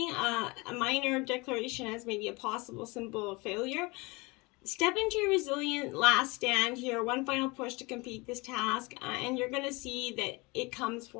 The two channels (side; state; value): right; quieter; 25.6 dB